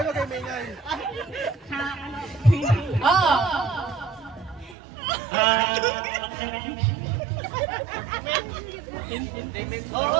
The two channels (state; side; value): drops out; left; at 4.8 s